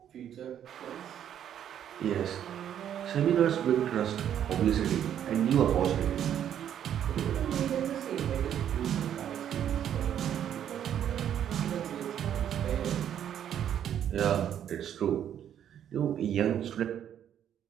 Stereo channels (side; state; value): left; quieter; 9.9 dB